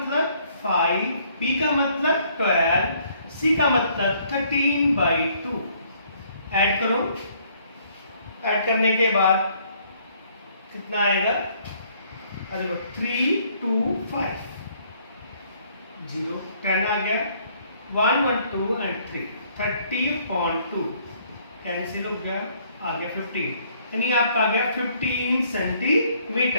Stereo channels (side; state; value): both; inverted; correlation -0.64